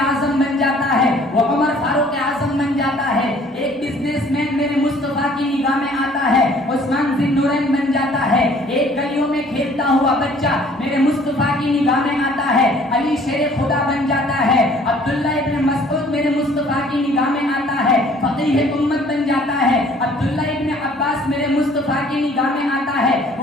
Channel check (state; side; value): normal; both; correlation 0.55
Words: बन जाता है, वो उमर फारूक आजम बन जाता है। एक बिजनेसमैन मेरे मुस्तफा की निगाह में आता है, उस्मान जिन्नुरैन बन जाता है। एक गलियों में खेलता हुआ बच्चा मेरे मुस्तफा की निगाह में आता है, अली शेर खुदा बन जाता है। अब्दुल्ला इब्न मसऊद मेरे मुस्तफा की निगाह में आता है, फकीह उम्मत बन जाता है। अब्दुल्ला इब्न अब्बास मेरे मुस्तफा की निगाह में आता है,